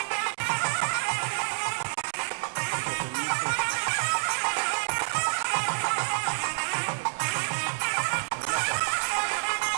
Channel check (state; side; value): silent; left; digital silence